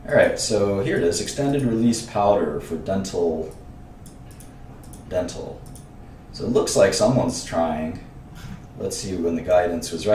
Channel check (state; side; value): identical; both; correlation 1.00